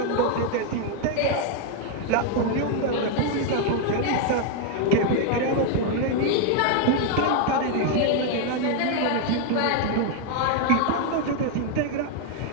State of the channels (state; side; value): different; both; correlation 0.00